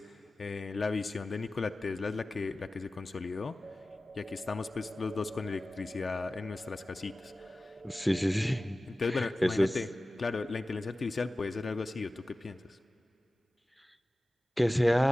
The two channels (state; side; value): normal; both; correlation 0.96